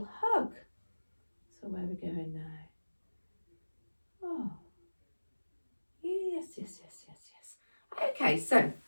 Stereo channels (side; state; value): both; inverted; correlation -1.00